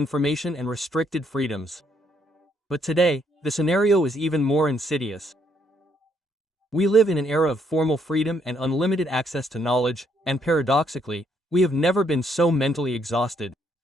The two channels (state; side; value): normal; both; correlation 0.71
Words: and restricted freedoms. But today, the scenario is even more insidious. We live in an era of formal freedom and unlimited access to knowledge, and paradoxically, we have never been so mentally exhausted.